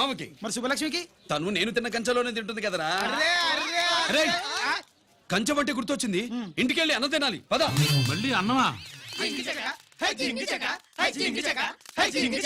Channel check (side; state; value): both; identical; correlation 1.00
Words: మరి శుభలక్ష్మికి? తను నేను తిన్న కంచంలోనే తింటుంది కదరా. అరే కంచం అంటే గుర్తొచ్చింది, ఇంటికెళ్ళి అన్నం తినాలి పద. మళ్ళీ అన్నమా?